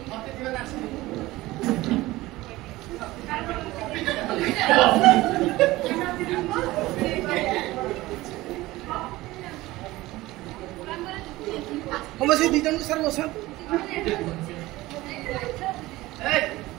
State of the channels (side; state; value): left; quieter; 18.5 dB